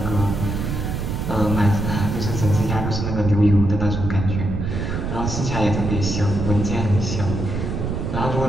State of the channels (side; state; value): right; noise; rumble, 3 dB below the sound